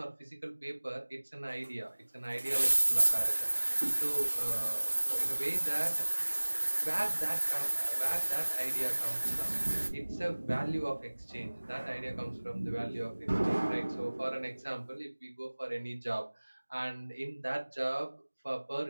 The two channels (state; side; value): inverted; both; correlation -1.00